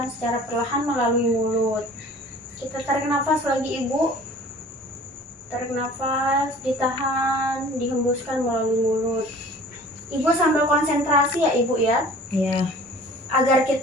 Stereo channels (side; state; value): both; normal; correlation 0.47